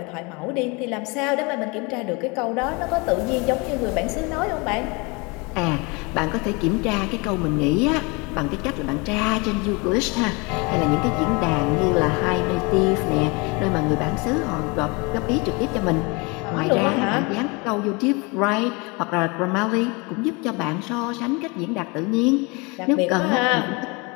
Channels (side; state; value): right; quieter; 28.2 dB